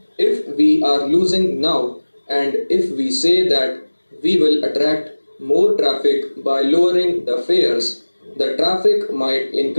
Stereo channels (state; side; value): inverted; both; correlation -1.00